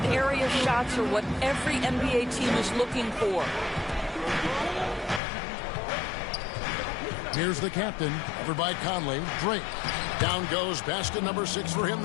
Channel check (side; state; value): right; drops out; at 5.2 s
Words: area shots are what every NBA team is looking for. Here's the captain, covered by Conley. Drake. Down goes basket number 6 for him